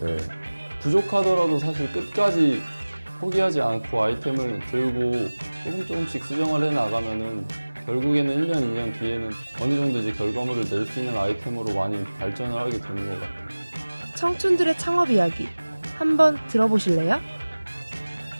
부족하더라도 사실 끝까지 포기하지 않고 아이템을 들고 조금씩 수정을 해 나가면은 결국에는 1년, 2년 뒤에는 어느 정도 이제 결과물을 낼 수 있는 아이템으로 많이 발전을 하게 되는 것 같아요. 청춘들의 창업 이야기 한번 들어보실래요?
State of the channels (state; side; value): inverted; both; correlation -1.00